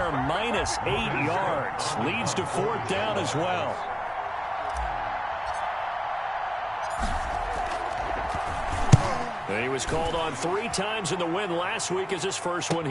minus 8 yards. Leads to 4th down as well. He was called on 3 times in the win last week as his first one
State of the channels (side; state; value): both; identical; correlation 1.00